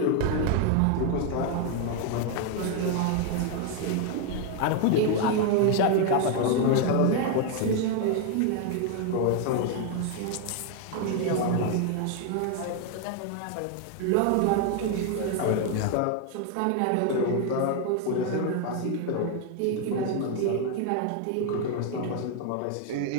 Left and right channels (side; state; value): both; different; correlation 0.01